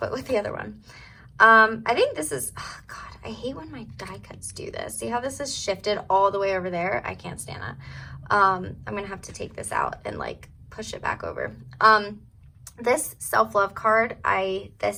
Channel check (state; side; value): identical; both; correlation 1.00